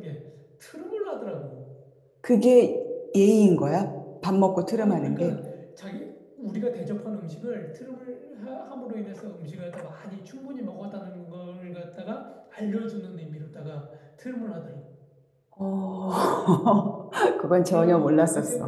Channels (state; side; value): identical; both; correlation 1.00